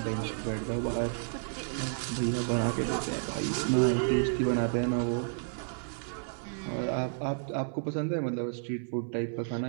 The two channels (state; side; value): silent; left; 57 dB below the other